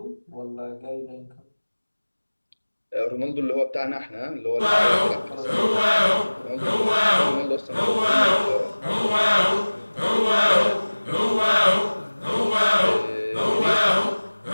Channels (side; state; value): both; inverted; correlation -1.00